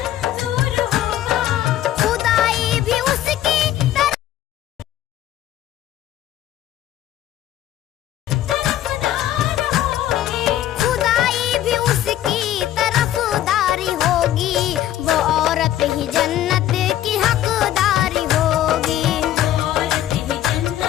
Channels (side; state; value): right; quieter; 12.7 dB